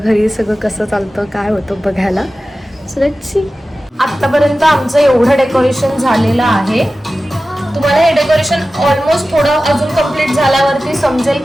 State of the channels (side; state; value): both; normal; correlation 0.95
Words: सगळं कसं चालतं काय होतं बघायला. So let's see. आत्तापर्यंत आमचं एवढं डेकोरेशन झालेलं आहे. तुम्हाला हे डेकोरेशन ऑलमोस्ट थोडं अजून कंप्लीट झाल्यावरती समजेल